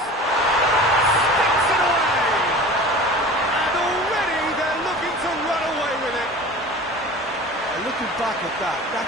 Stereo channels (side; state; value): both; normal; correlation 0.38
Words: Sticks it away! And already they're looking to run away with it. And looking back at that,